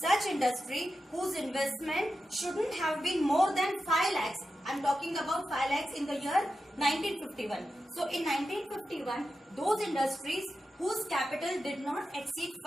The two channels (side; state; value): both; normal; correlation 0.90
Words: industry whose investment shouldn't have been more than 5 lakhs. I'm talking about 5 lakhs in the year 1951. So in 1951, those industries whose capital did not exceed